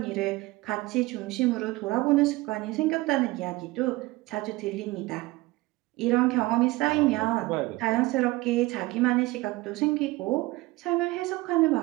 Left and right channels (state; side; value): quieter; left; 20.5 dB